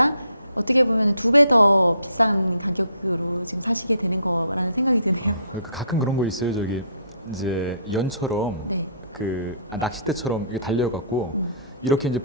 어떻게 보면 2배 더 비싼 가격으로 지금 사시게 되는 거라는 생각이 드네요. 가끔 그런 거 있어요. 저기 이제 연처럼 네. 그 낚싯대처럼 이렇게 달려갖고 이렇게 이제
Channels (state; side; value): inverted; both; correlation -0.61